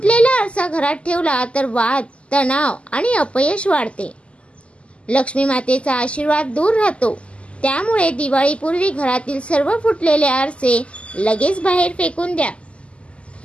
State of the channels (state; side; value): late; right; 0.057 ms